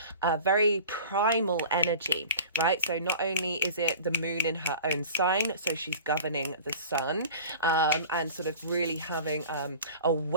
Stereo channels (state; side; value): inverted; both; correlation -0.40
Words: very primal energy, right? So not only is it the moon in her own sign, so she's governing the sun, and sort of really having a